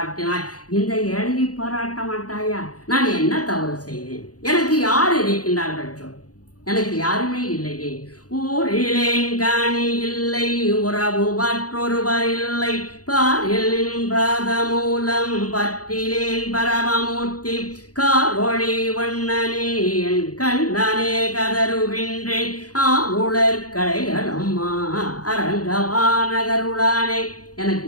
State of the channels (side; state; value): right; late; 0.67 ms